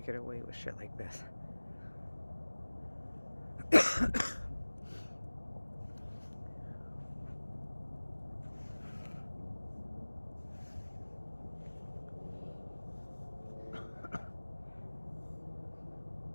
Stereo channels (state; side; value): inverted; both; correlation -1.00